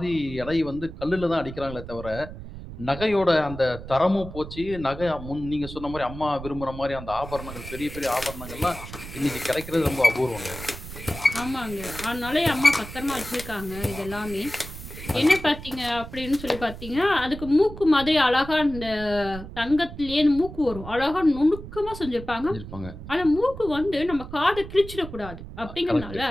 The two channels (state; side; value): noise; right; rumble, 12 dB below the sound